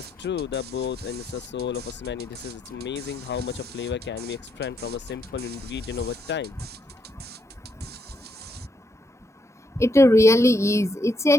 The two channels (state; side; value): normal; both; correlation 0.77